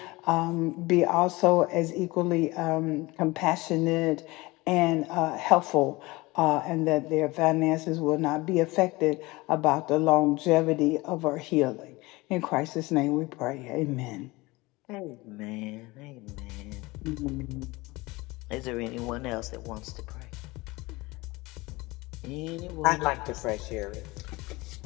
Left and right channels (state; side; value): quieter; right; 22.1 dB